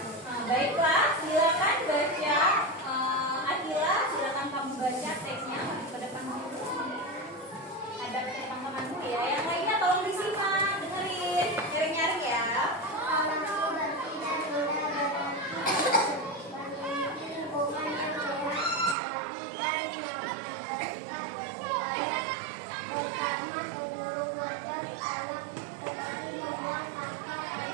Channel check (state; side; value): drops out; left; at 18.9 s